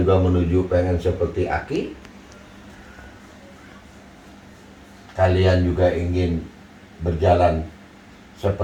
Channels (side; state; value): both; identical; correlation 1.00